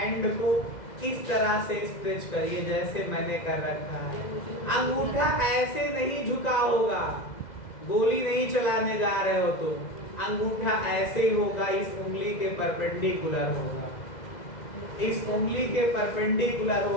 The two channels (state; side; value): late; right; 2.1 ms